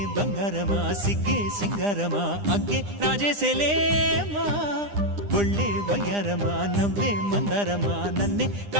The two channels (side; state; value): left; late; 9.9 ms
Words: బంగారమా సిగ్గే సింగారమా అగ్గే రాజేసేలేమా ఒళ్ళే వయ్యారమా నవ్వే మందారమా నన్నే